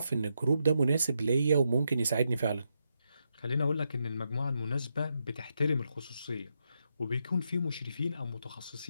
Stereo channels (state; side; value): inverted; both; correlation -0.82